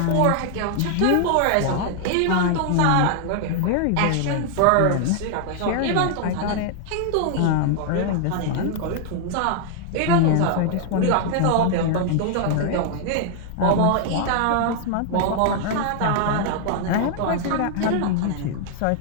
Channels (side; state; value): both; different; correlation 0.00